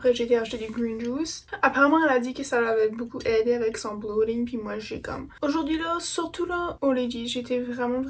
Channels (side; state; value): both; identical; correlation 1.00